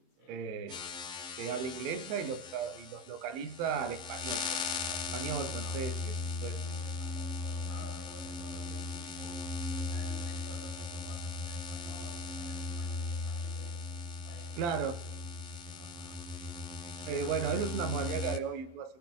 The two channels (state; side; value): late; left; 23 ms